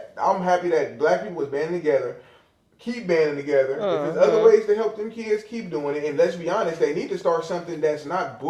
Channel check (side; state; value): both; identical; correlation 1.00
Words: I'm happy that black people was banding together. Keep banding together. If there's other ways to help them kids, keep doing it. And let's be honest, they need to start something that's not